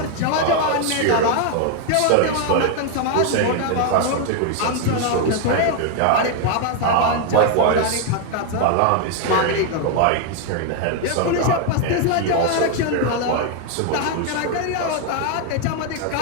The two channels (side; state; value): both; different; correlation 0.00